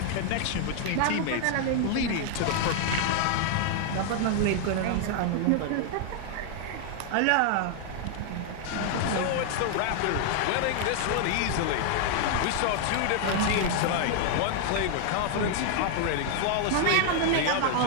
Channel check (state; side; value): different; both; correlation 0.00